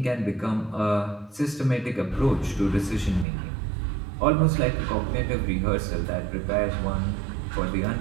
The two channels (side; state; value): left; drops out; at 3.2 s